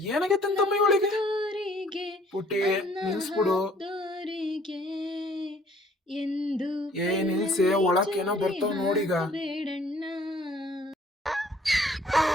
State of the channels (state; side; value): normal; both; correlation 0.58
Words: ಏನಾಗೈತಂತಮ್ಮ ಇವಳಿಗೆ? ದೋರಿಗೆ ಪುಟ್ಟಿ ಅನ್ನ ನಿಲ್ಸ್ಬಿಡು. ಹಾಕ್ದೋರಿಗೆ ಎಂದು ನಿಲ್ಸೆ, ಒಳಕ್ಕೇನೋ ಬರ್ತಾವ್ ನೋಡೀಗ. ಬೇಡಣ್ಣ.